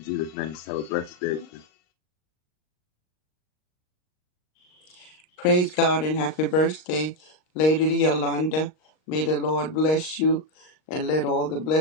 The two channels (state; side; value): late; right; 39 ms